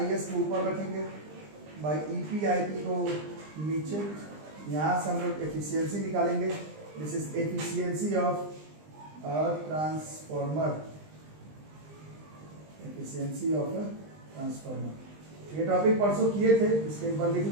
को ऊपर रखेंगे, बाई EP IP को नीचे, यहाँ से हम लोग एफिशिएंसी निकालेंगे, this is efficiency of a transformer, efficiency of a transformer. ये टॉपिक परसों किए थे, इसको एक बार लिख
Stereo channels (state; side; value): late; left; 20 ms